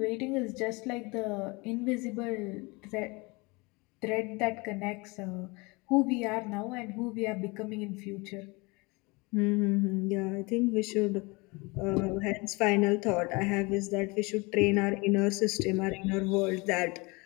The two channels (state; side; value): quieter; right; 26.2 dB